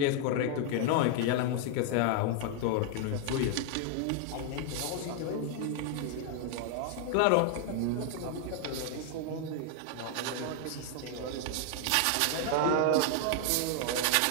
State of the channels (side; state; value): both; different; correlation 0.00